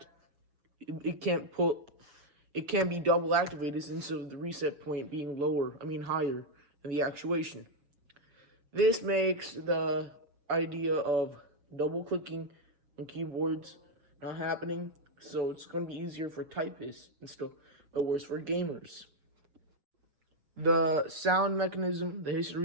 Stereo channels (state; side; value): late; left; 6.9 ms